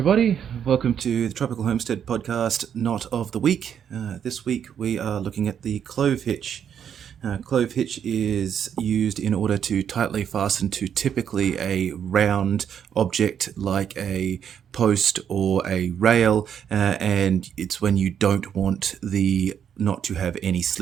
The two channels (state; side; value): quieter; left; 8.5 dB